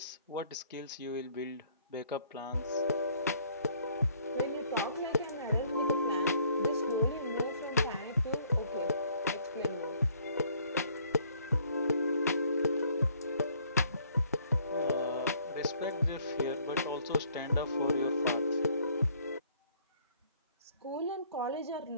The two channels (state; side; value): inverted; both; correlation -0.62